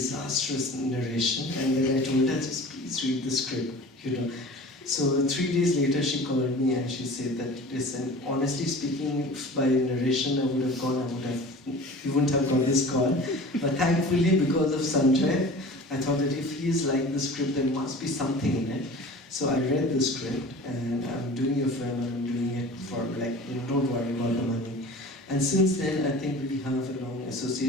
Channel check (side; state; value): both; normal; correlation 0.40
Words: narration, and then I told her, just please read the script, So 3 days later, she called me and she said that, listen, honestly speaking, by narration I would have gone, you wouldn't have got this call. But thankfully, because of Sanjay, I thought that if he is like the script, there must be something in it. So I read the script, and I'm doing a film, and I'm doing it for don't worry about the money. And since then, I think we have a long